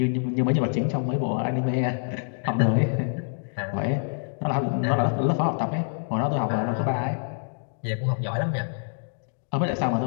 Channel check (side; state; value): right; silent; digital silence